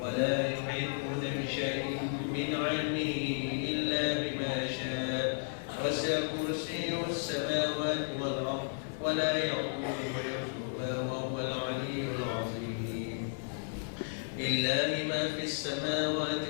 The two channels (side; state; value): right; silent; digital silence